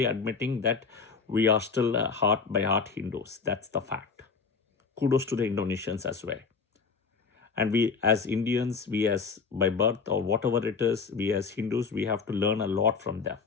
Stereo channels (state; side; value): quieter; right; 5.2 dB